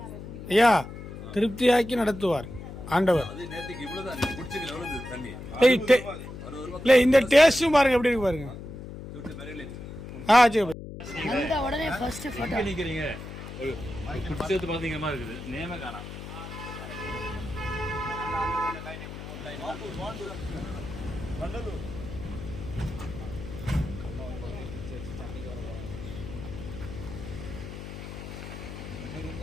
ஐயா திருப்தியாக்கி நடத்துவார் ஆண்டவர் அது நேற்றுக்கு இவ்வளவுதான் நீங்க குடிச்சீங்க எவ்வளவு தண்ணி இல்லை இந்த டேஸ்ட்டும் பாருங்க எப்படி இருக்கு பாருங்க சரி அந்த உடனே ஃபர்ஸ்ட் போட்டோ நிக்கிறீங்க குடிச்சது பாத்தீங்க மாதிரி இருக்குது நேம காணாம்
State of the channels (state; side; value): noise; left; hum, 11 dB below the sound